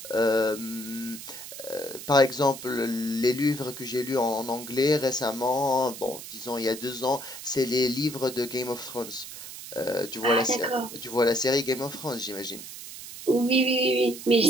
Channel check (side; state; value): right; noise; hiss, 12 dB below the sound